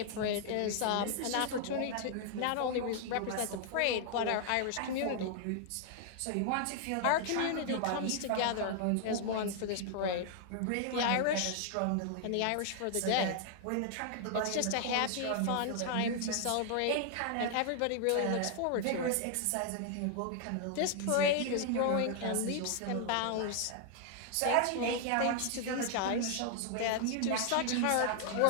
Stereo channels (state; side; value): different; both; correlation 0.00